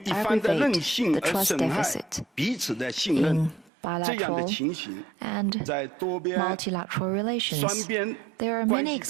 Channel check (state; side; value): drops out; left; at 3.7 s